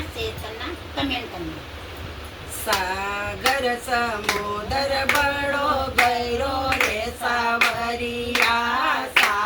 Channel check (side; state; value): both; identical; correlation 1.00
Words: शेयर करना, कमेंट करना। सागर समुद्र बड़ो गहरो रे सावरिया,